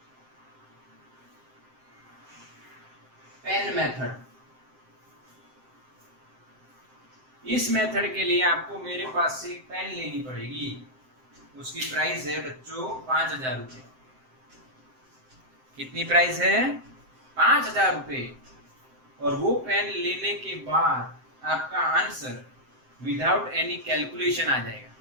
पेन मेथड। इस मेथड के लिए आपको मेरे पास से एक पेन लेनी पड़ेगी, उसकी प्राइस है बच्चों 5000 रुपये। कितनी प्राइस है? 5000 रुपये। और वो पेन लेने के बाद आपका आंसर विदाउट एनी कैलकुलेशन आ जाएगा।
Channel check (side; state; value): left; late; 7.7 ms